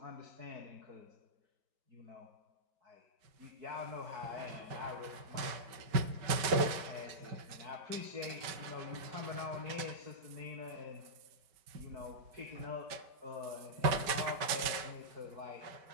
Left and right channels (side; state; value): left; late; 5.2 ms